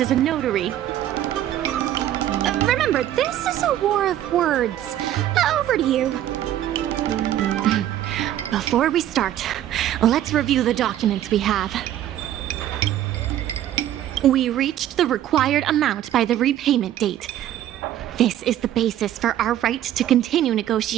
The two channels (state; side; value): quieter; left; 12.1 dB